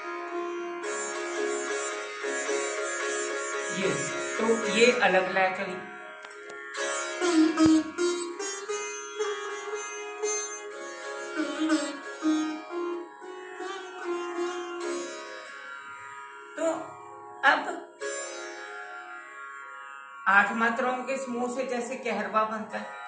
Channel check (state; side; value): identical; both; correlation 1.00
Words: ये तो ये अलग लय चली। तो अब 8 मात्राओं के समूह से जैसे कहरवा बनता है,